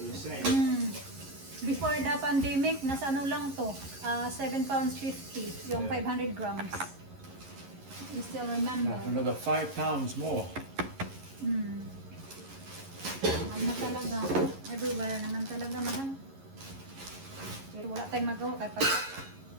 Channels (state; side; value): late; left; 11 ms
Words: the same. Before the pandemic, nasa ano lang to, 7 pounds 50, yung Yeah. 500 grams. You still remember? Now for another 5 pounds more. Mahal na talaga. Everywhere naman talaga mahal. Pero wala tayong magawa kahit pag...